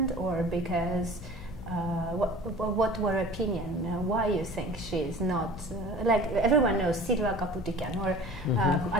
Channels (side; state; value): left; noise; hum, 15 dB below the sound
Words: or because what were opinion? Why you think she is not like everyone knows Silva Kaputikian or